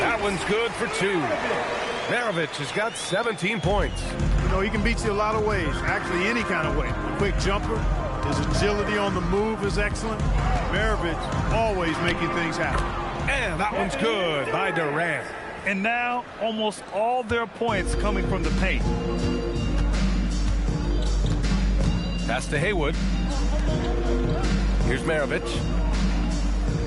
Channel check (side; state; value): both; identical; correlation 1.00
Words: one's good for 2. Maravich has got 17 points. You know, he can beat you a lot of ways, actually any kind of way. A quick jumper, his agility on the move is excellent. Maravich always making things happen. And that one's good by Durant. And now almost all their points coming from the paint. Pass to Haywood. Here's Maravich.